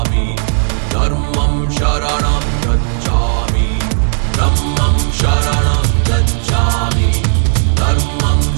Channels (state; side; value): silent; left; digital silence